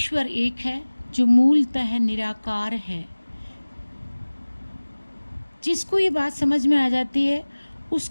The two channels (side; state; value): both; inverted; correlation -1.00